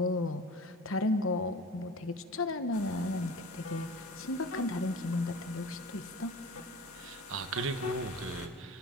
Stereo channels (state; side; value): normal; both; correlation 0.38